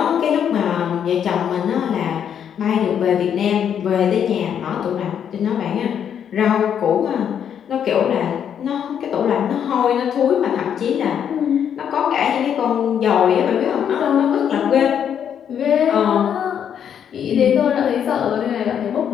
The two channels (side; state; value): right; quieter; 8.6 dB